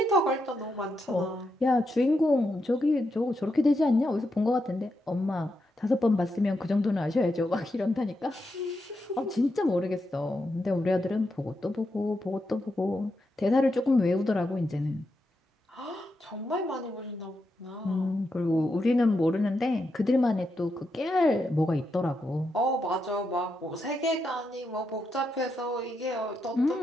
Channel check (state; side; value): normal; both; correlation 0.84